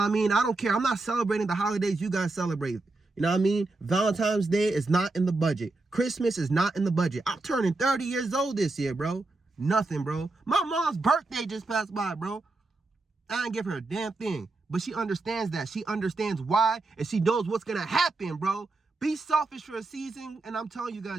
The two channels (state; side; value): quieter; left; 3.2 dB